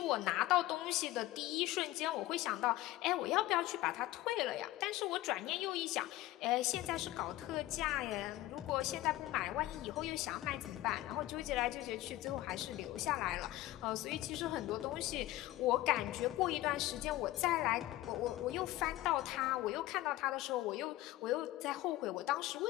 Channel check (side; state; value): right; quieter; 16.4 dB